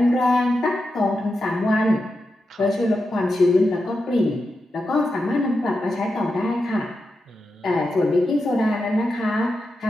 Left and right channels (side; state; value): both; normal; correlation 0.88